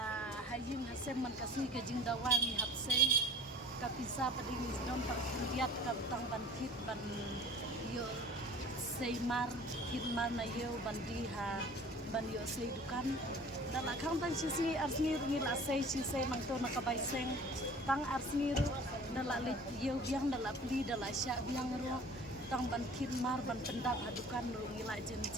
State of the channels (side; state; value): both; normal; correlation 0.45